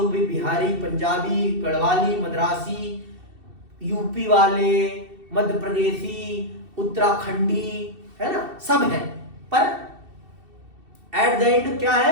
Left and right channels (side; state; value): left; late; 2.7 ms